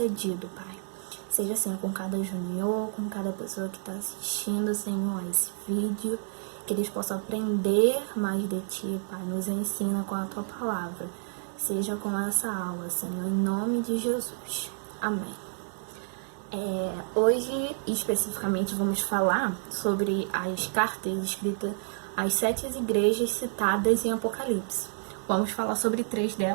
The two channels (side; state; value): left; silent; digital silence